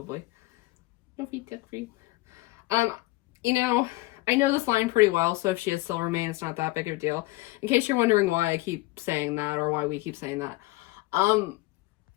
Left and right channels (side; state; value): right; quieter; 20.6 dB